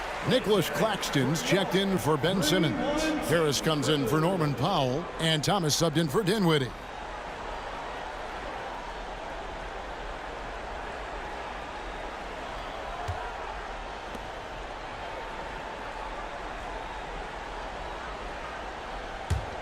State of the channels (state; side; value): identical; both; correlation 1.00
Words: Nicholas Claxton's checked in for Ben Simmons. Harris comes in for Norman Powell, and Thomas subbed in for Dinwiddie.